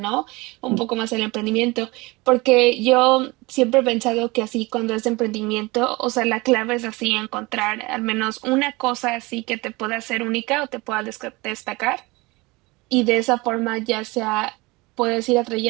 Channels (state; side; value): quieter; left; 23.5 dB